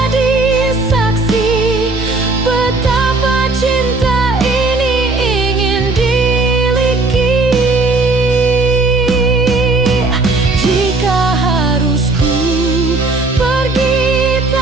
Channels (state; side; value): quieter; left; 3.3 dB